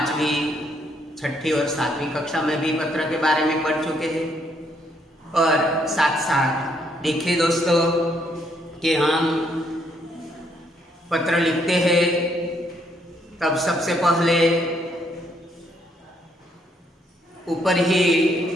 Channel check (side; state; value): both; normal; correlation 0.71